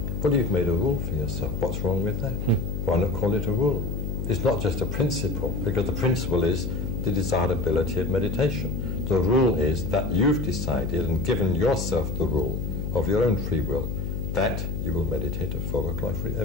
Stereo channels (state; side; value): noise; left; hum, 3 dB below the sound